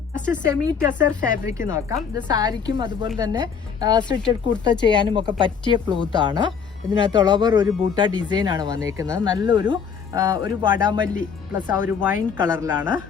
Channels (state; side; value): quieter; right; 6.6 dB